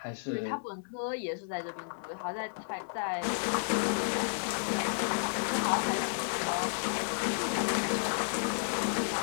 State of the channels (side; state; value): right; silent; digital silence